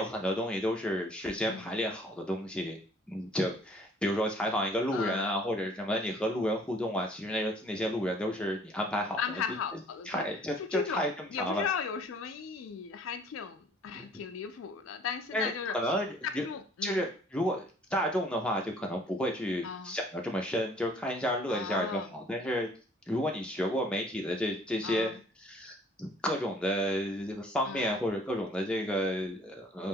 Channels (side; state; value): both; normal; correlation 0.56